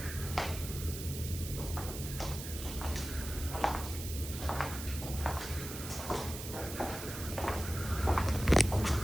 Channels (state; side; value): noise; right; hiss, 9 dB below the sound